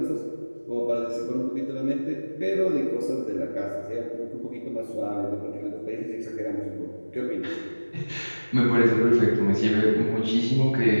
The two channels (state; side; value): inverted; both; correlation -1.00